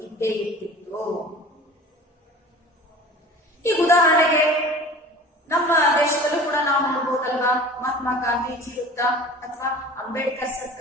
ಇದ್ದೇ ಇರ್ತಿತ್ತು. ಈಗ ಉದಾಹರಣೆಗೆ ನಮ್ಮ ದೇಶದಲ್ಲೂ ಕೂಡ ನಾವು ನೋಡ್ಬೋದಲ್ವಾ, ಮಹಾತ್ಮ ಗಾಂಧೀಜಿ ವೃತ್ತ ಅಥವಾ ಅಂಬೇಡ್ಕರ್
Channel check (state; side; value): normal; both; correlation 0.41